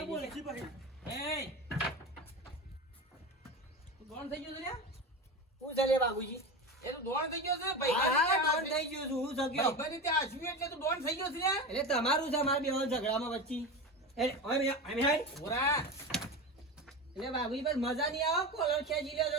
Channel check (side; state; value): both; normal; correlation 0.24